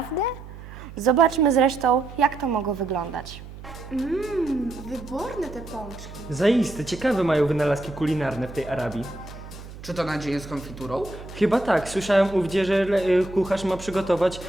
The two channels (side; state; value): right; noise; hum, 15 dB below the sound